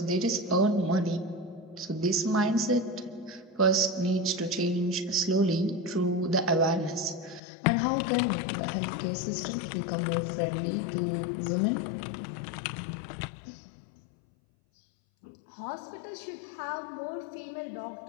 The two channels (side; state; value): right; drops out; at 7.4 s